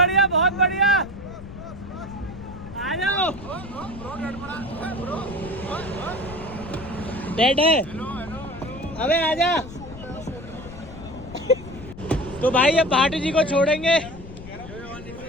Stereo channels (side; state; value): left; noise; rumble, 14 dB below the sound